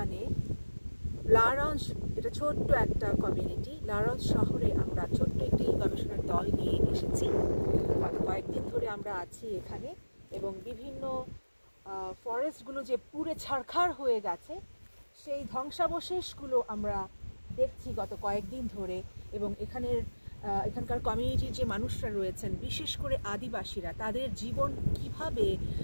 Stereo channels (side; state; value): both; inverted; correlation -1.00